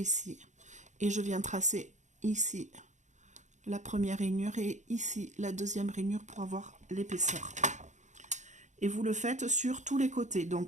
et je viens tracer ici la première rainure et ici la deuxième rainure pour avoir l'épaisseur. Et vous le faites sur tous les côtés.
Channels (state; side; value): late; left; 0.35 ms